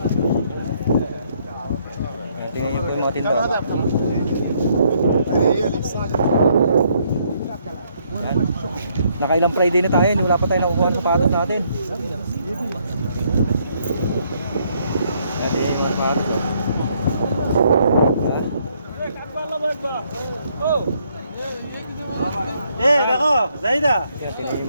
Yan, tingnan nyo po yung mga tinda. Yan. Nakailang Friday na tayo, wala pa tayo nakukuha ng sapatos natin. Yan, yung mga sapatos. Yan. Nako, Zaida. Yan, tingnan yung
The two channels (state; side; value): inverted; both; correlation -0.70